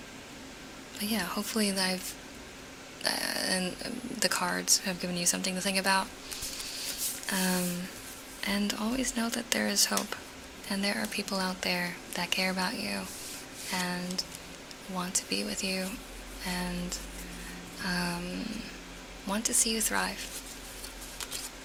But yeah, hopefully and the cards have given you something to think about. And always know that there is hope, and there are people out there that care about you, and want to be with you, and want to see you thrive.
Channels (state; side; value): identical; both; correlation 1.00